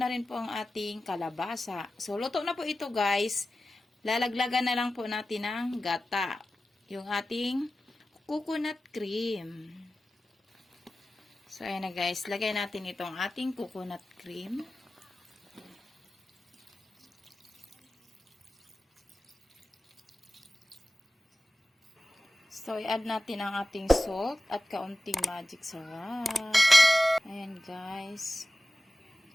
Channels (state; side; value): normal; both; correlation 0.94